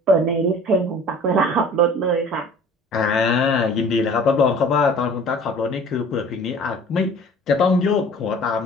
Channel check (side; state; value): both; normal; correlation 0.47